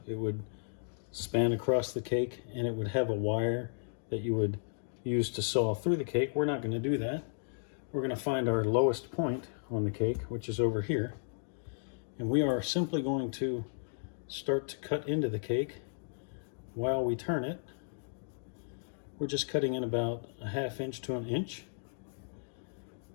It would span across the cake, and it would have a wire that you would use to saw through the cake. We're not going to do that. We're going to find our lowest point on the cake, which is over here, and we are simply going to start to cut into the cake while we turn it. We're just cutting in about a 1/2 inch to 1 inch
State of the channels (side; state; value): right; silent; digital silence